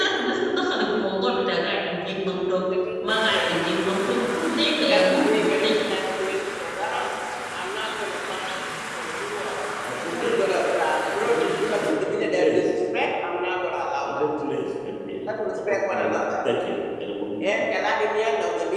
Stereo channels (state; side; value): identical; both; correlation 1.00